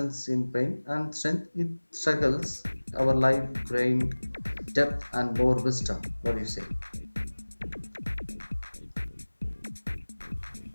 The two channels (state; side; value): inverted; both; correlation -1.00